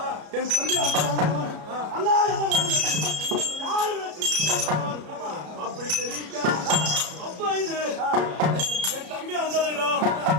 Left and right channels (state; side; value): late; left; 33 ms